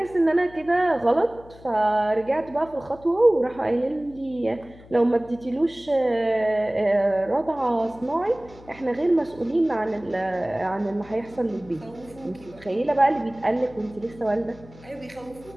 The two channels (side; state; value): left; noise; hum, 21 dB below the sound